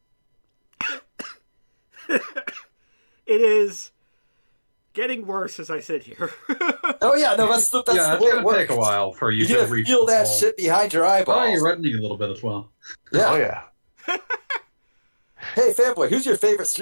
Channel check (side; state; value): both; inverted; correlation -1.00